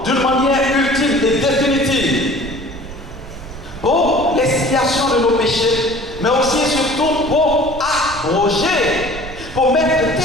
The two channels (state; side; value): noise; right; rumble, 13 dB below the sound